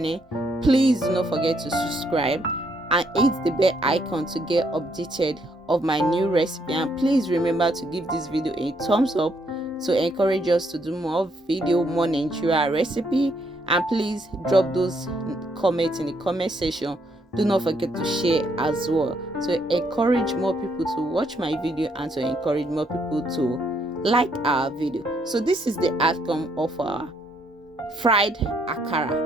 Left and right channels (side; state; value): both; normal; correlation 0.72